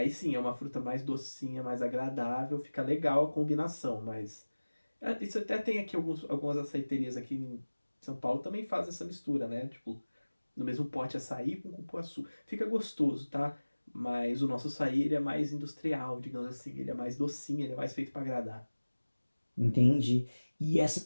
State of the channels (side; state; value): both; inverted; correlation -1.00